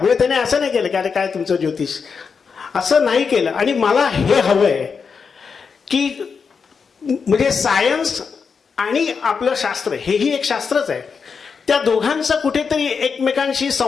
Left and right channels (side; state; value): right; quieter; 5.7 dB